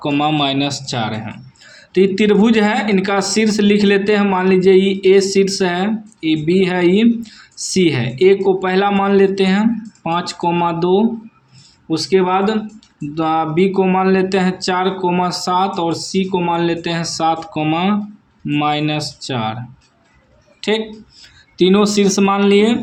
हैं। तो ये त्रिभुज है, इनका शीर्ष लिख लेते हैं। मान लीजिए ये ए शीर्ष है, ये बी है, ये सी है। ए को पहला मान लेते हैं 5,2, उसके बाद बी को मान लेते हैं 4,7 और सी को मान लेते हैं 7,-4। ठीक, तीनों शीर्ष मान लिए।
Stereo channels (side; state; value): both; identical; correlation 1.00